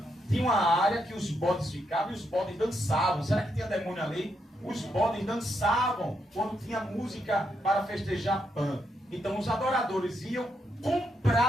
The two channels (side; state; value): both; normal; correlation 0.80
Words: tinha uma área que os bodes ficavam e os bodes dançavam. Será que tinha demônio ali? Os bodes dançavam quando tinha música para festejar Pan. Então os adoradores iam,